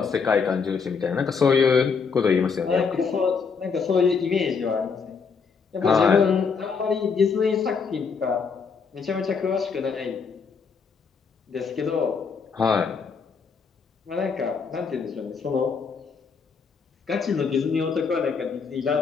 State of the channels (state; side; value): quieter; right; 5.5 dB